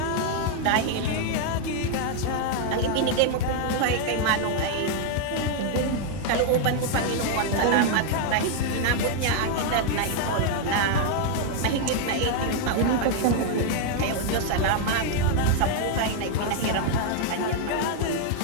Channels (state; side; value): different; both; correlation 0.00